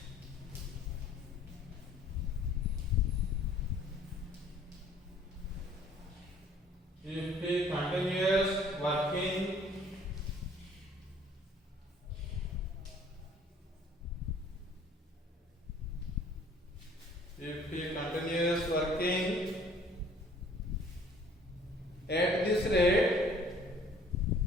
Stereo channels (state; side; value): normal; both; correlation 0.56